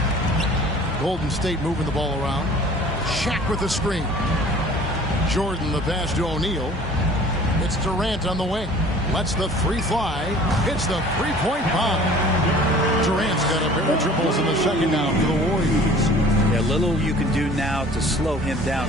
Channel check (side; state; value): both; normal; correlation 0.48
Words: Golden State moving the ball around. Shaq Shaq with the screen. Jordan the pass to O'Neal. It's Durant on the wing. Lets the three fly. Hits the three-point bomb. Durant's got a pair of triples in the second now for the Warriors. Yeah, little you can do now to slow him